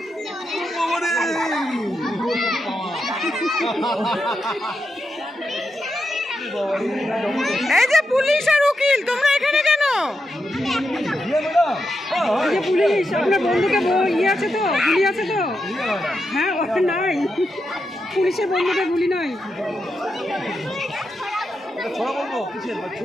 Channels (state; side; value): normal; both; correlation 0.86